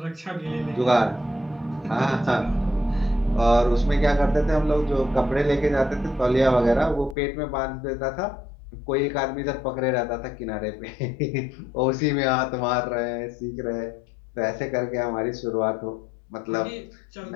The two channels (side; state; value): right; drops out; at 7.2 s